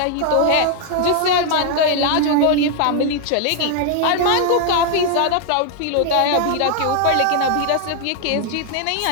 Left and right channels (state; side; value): different; both; correlation 0.00